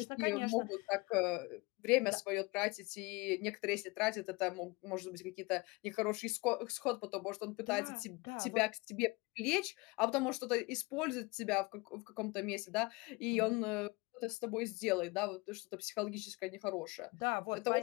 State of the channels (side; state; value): right; quieter; 25.2 dB